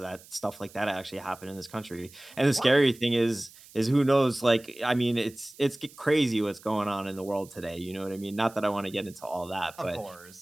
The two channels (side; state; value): right; noise; hiss, 22 dB below the sound